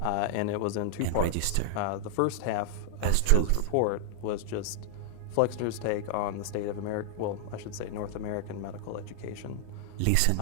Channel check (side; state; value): both; different; correlation -0.01